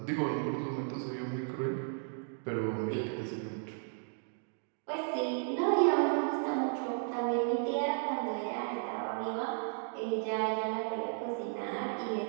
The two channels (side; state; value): left; silent; 55 dB below the other